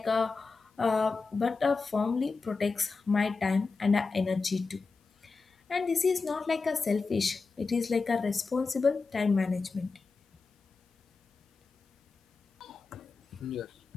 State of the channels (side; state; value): right; quieter; 4.3 dB